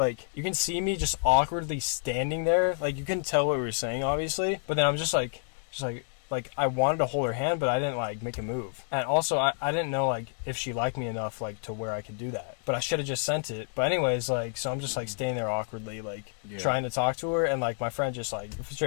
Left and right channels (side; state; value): right; silent; digital silence